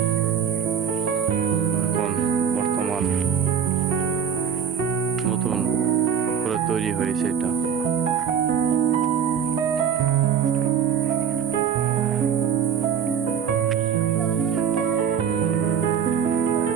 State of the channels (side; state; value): left; quieter; 7.8 dB